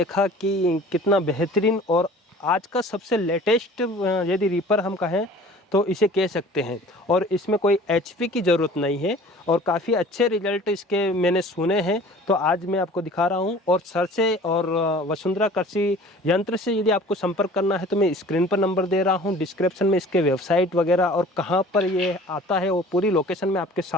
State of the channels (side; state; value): both; normal; correlation 0.46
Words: कि कितना बेहतरीन और आज का सबसे लेटेस्ट यदि रीपर हम कहें तो इसे कह सकते हैं और इसमें कोई एचपी की ज़रूरत नहीं है और काफ़ी अच्छे रिजल्ट इसके मैंने सुने हैं। तो आज मैं आपको दिखा रहा हूं और सर से और वसुंधरा कृषि यंत्र से यदि आपको संपर्क करना है तो मैं स्क्रीन पर नंबर दे रहा हूं, डिस्क्रिप्शन में इसके वेबसाइट वगैरह और कहां पर ये आता है वो पूरी लोकेशन मैं आपके